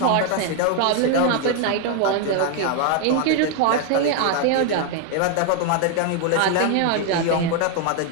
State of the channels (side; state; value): both; different; correlation 0.01